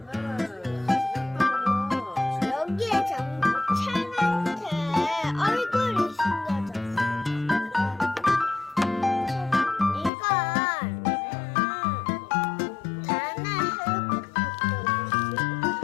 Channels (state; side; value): drops out; right; at 10.1 s